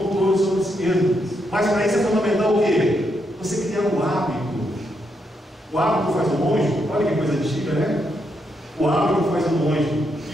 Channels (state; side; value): normal; both; correlation 0.80